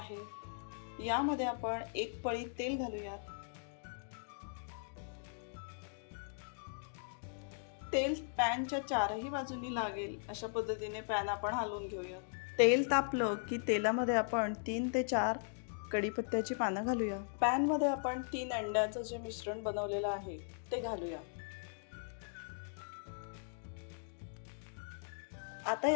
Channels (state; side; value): silent; right; digital silence